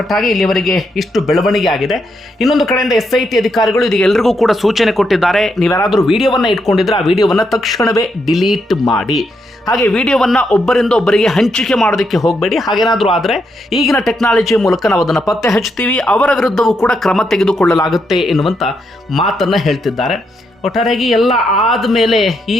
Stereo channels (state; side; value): normal; both; correlation 0.80